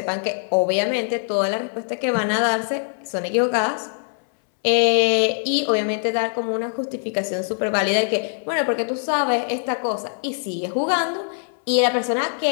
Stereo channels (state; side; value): silent; right; 64 dB below the other